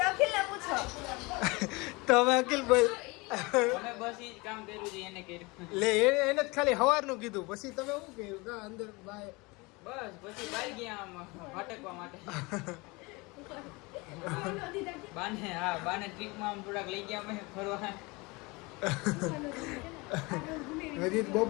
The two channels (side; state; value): right; quieter; 25.4 dB